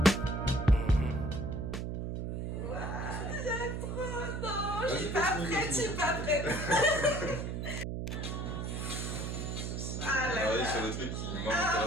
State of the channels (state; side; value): noise; right; hum, 3 dB below the sound